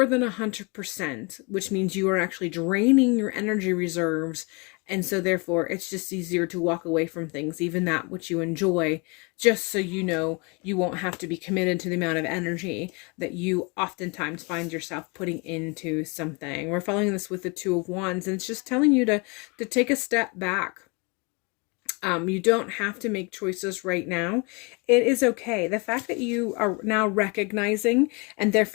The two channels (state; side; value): quieter; right; 30.3 dB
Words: than 100%, which means you are actually draining your energy reserves. And so therefore it's just easier to walk away from things, even that which you enjoy, just so you know you won't have to be committed to the amount of energy that you oftentimes find yourself putting into something. We're following this with the 2 of Wands, and it's just telling you to take a step back. You don't have to make choices right now. It is okay. The fact that you are now recognizing and